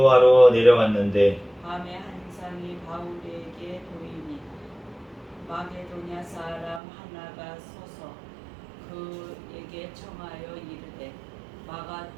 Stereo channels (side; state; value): left; drops out; at 6.8 s